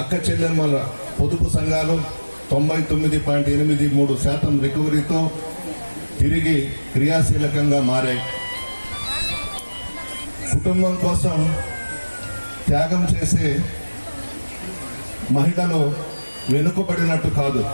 అక్క చెల్లెమ్మల పొదుపు సంఘాలు 99.83% రికవరీతో తిరిగి క్రియాశీలకంగా మారాయి. కుటుంబం కోసం త్యాగం చేసే మహిళలు వెనుకబడినట్టు కాదు,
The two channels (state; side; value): inverted; both; correlation -1.00